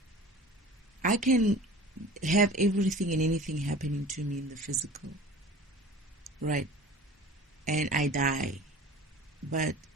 I can have everything and anything happening to me in the physical, right? And I die. But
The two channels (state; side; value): normal; both; correlation 0.41